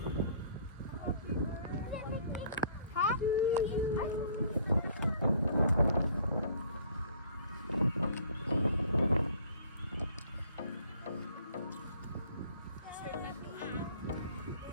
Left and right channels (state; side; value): inverted; both; correlation -0.57